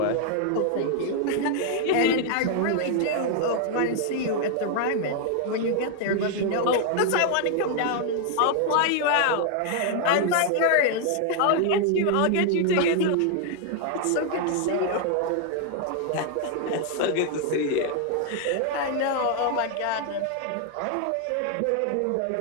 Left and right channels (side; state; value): both; different; correlation 0.00